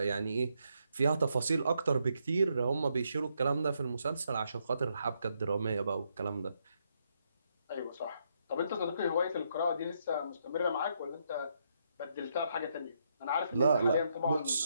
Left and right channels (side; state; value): both; inverted; correlation -0.77